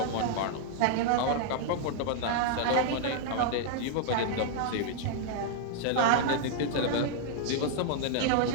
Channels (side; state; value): both; different; correlation -0.01